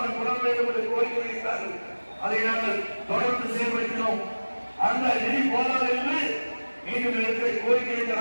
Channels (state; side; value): inverted; both; correlation -1.00